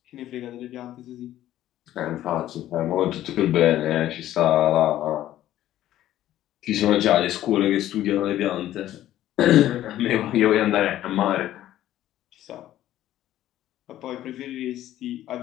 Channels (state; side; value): quieter; right; 13.2 dB